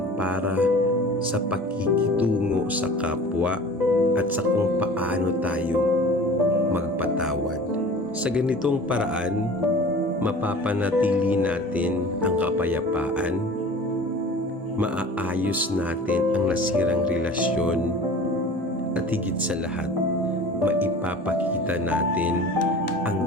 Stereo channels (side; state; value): both; normal; correlation 0.41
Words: para sa pakikitungo sa kapwa at sa kung paano tayo magpatawad. Sa ganitong paraan, mapapanatili natin ang kapayapaan, maaayos natin ang nasirang relasyon, at higit sa lahat, maipapakita natin